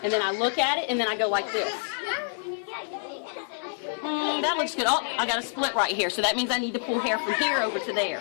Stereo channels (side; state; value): right; silent; digital silence